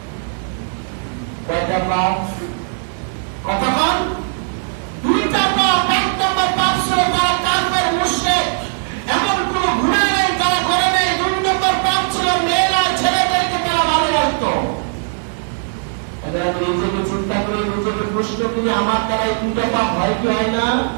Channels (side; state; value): left; silent; digital silence